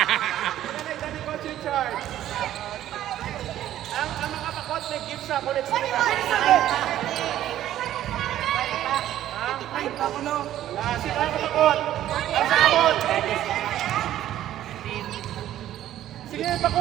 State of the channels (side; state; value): left; quieter; 12.5 dB